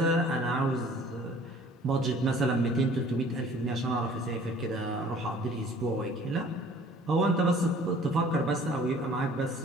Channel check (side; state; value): both; normal; correlation 0.52